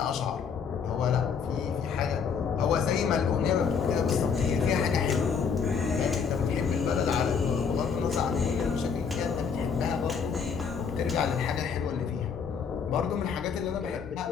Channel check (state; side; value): quieter; right; 6.3 dB